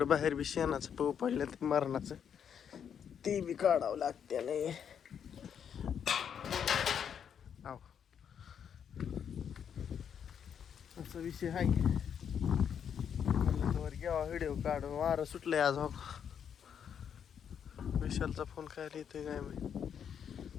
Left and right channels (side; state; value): right; quieter; 8.1 dB